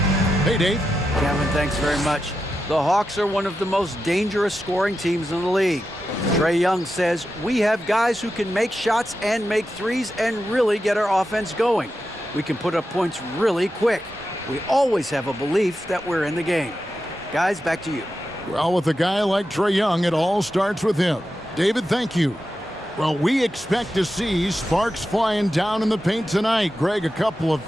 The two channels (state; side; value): normal; both; correlation 0.89